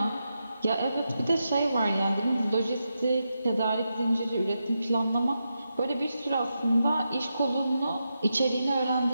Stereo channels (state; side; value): inverted; both; correlation -0.87